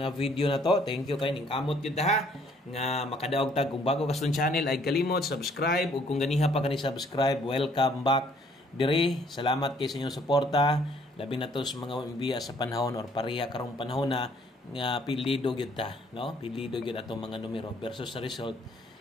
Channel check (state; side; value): normal; both; correlation 0.62